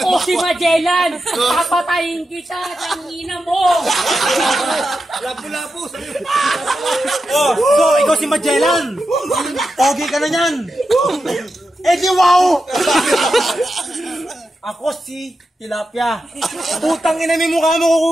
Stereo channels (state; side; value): normal; both; correlation 0.89